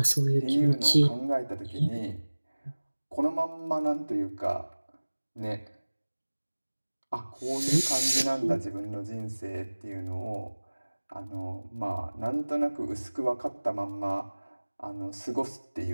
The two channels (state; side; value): inverted; both; correlation -1.00